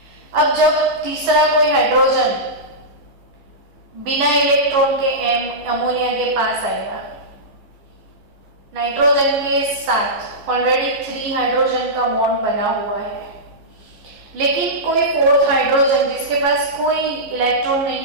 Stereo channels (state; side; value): late; left; 15 ms